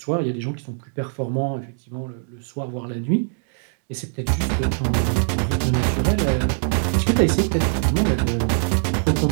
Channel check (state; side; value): silent; left; digital silence